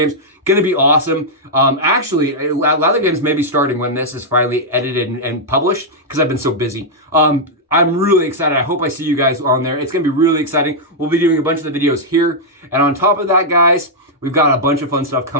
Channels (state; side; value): normal; both; correlation -0.05